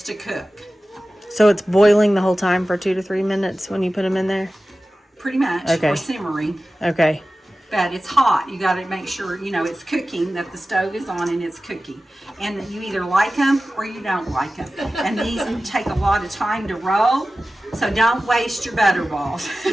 to cook. So it's boiling the whole time for 2 to 3 minutes when you put them in there? Pretty much, Okay. or simmering. Okay. But it's hot. You got to make sure, you know, it's cooking, that the stove is on and it's cooking. And you either like them or you don't like them. And these take a lot of time to roll, so don't waste your butterballs.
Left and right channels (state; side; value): normal; both; correlation 0.95